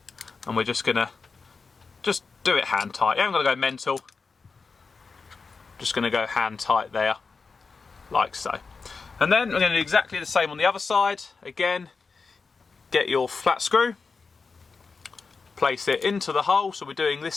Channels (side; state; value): right; quieter; 4.6 dB